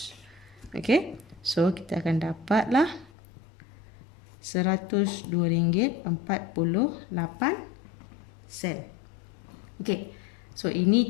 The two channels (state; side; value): drops out; right; at 3.1 s